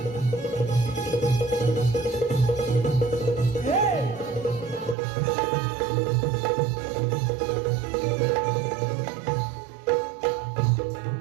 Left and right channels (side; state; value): left; drops out; at 5.0 s